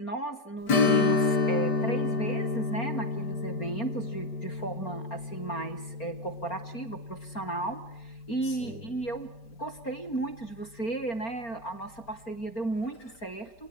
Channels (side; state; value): right; late; 5.1 ms